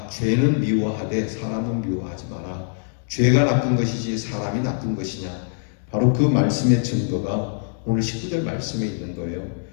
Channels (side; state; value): right; silent; digital silence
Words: 죄는 미워하되 사람은 미워하지 마라. 죄가 나쁜 것이지 사람이 나쁜 것이냐. 바로 그 말씀의 증거가 오늘 19절 말씀에 있는 거예요.